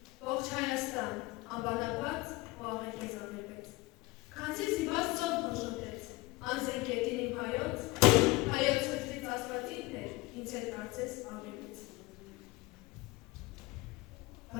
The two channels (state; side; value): quieter; right; 21.7 dB